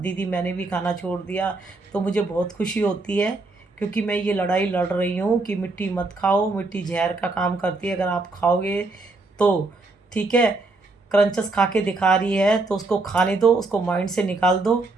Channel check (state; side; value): quieter; left; 3.3 dB